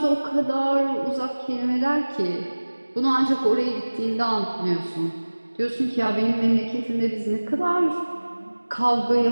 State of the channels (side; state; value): both; inverted; correlation -1.00